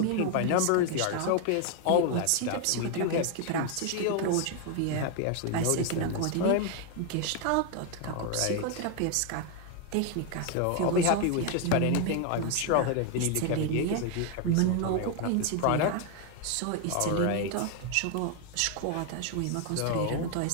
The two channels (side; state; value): both; different; correlation 0.01